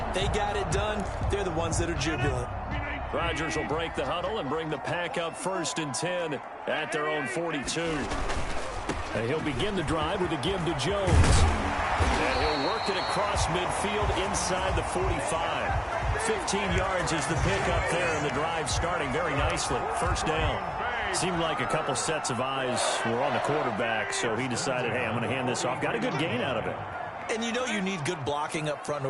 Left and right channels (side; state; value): both; identical; correlation 1.00